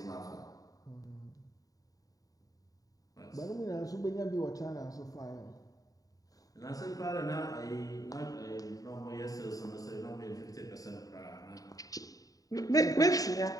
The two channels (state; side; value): late; right; 0.18 ms